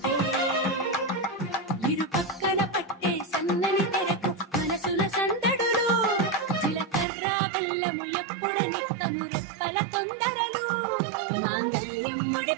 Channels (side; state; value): left; drops out; at 7.1 s